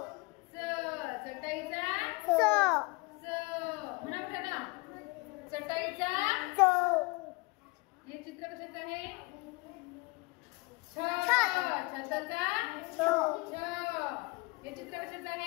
म्हणा कुठे ना चटईचा। हे चित्र कशाचं आहे छताचा छ। हे चित्र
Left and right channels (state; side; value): quieter; right; 26.1 dB